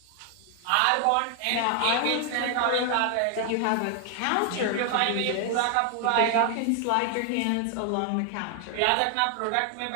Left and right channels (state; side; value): different; both; correlation 0.00